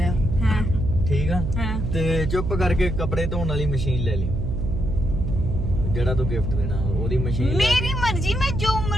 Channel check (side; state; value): right; noise; hum, 2 dB below the sound